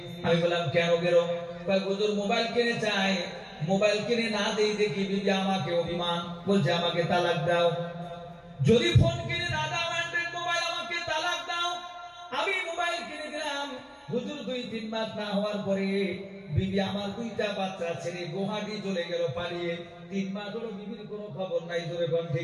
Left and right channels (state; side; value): identical; both; correlation 1.00